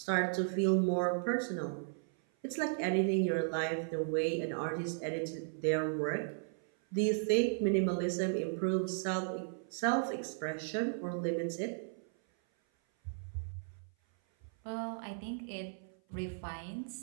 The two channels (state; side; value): silent; left; 54 dB below the other